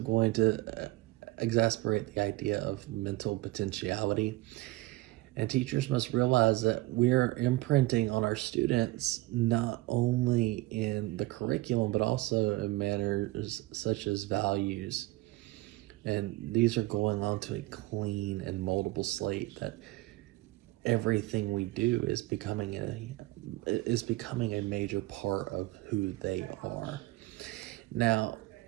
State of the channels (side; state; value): left; quieter; 19.2 dB